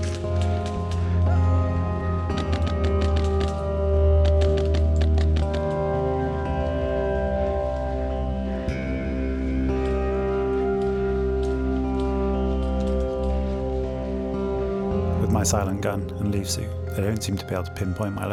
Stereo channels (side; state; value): both; identical; correlation 1.00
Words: With my silent gun and leaf suit, they don't seem to be able to pinpoint my